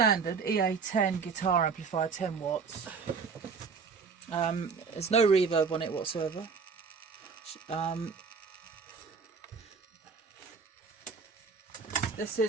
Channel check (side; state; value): left; quieter; 5.5 dB